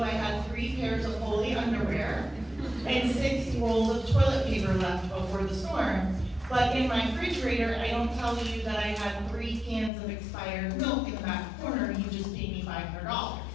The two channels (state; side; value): drops out; right; at 9.9 s